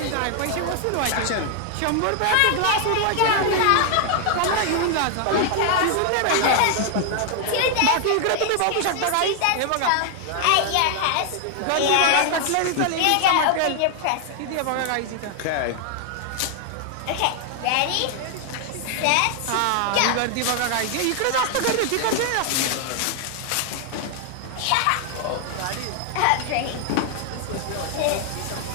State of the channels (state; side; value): different; both; correlation 0.00